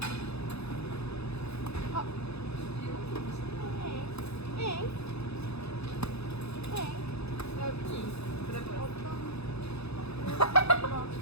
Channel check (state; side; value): late; right; 0.79 ms